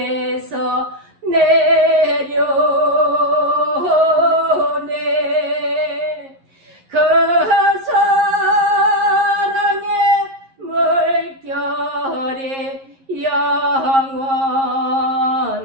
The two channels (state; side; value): late; left; 11 ms